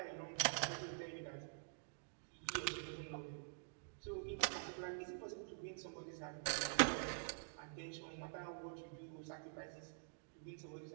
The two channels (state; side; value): silent; left; digital silence